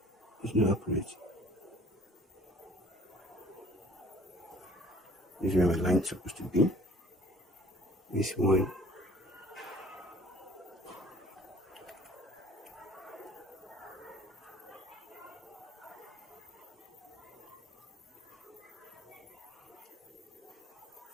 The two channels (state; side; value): normal; both; correlation 0.52